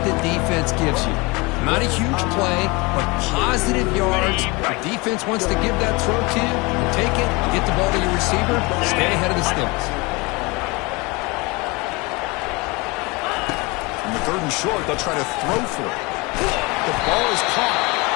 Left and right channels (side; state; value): right; quieter; 26.0 dB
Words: the defense gives you. Not a huge play, but positive yards. The defense wants to give that throw to you. You take it, get the ball to your receiver, stay ahead of the sticks. In the third and short, they'll try to throw for it. The ball is caught.